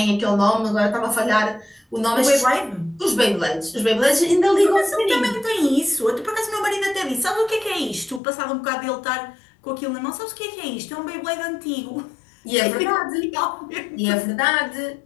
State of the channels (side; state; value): right; drops out; at 8.2 s